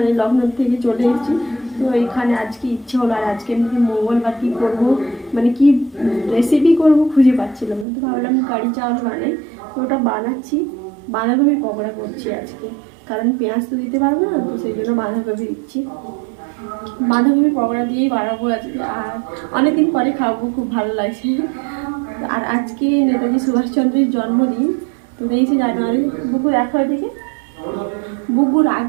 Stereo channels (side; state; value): left; drops out; at 7.9 s